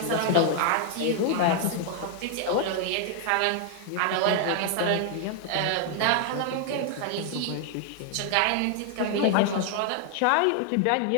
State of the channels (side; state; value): both; different; correlation 0.00